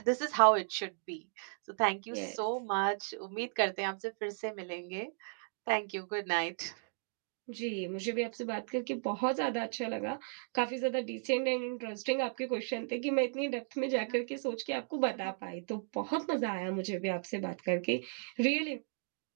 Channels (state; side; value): silent; left; digital silence